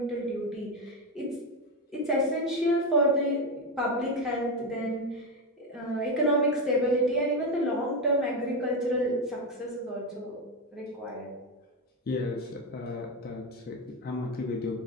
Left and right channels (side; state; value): both; normal; correlation 0.12